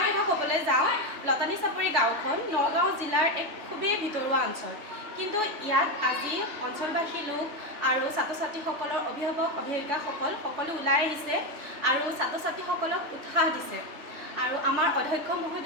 কথা ক'বলৈ যাওঁ, লতানী চাপৰি গাঁওখন নগাঁও জিলাৰ এক খুবেই ভিতৰুৱা অঞ্চল, কিন্তু ইয়াত আজি অঞ্চলবাসী লোক আৰু ছাত্ৰ ছাত্ৰীসকলৰ অভিভাৱক অভিভাৱিকাসকল সকলো ওলাই আহিছে আৰু ছাত্ৰ ছাত্ৰীসকলক উৎসাহ দিছে। আৰু আমাৰ অধ্যক্ষ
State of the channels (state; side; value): late; left; 3.4 ms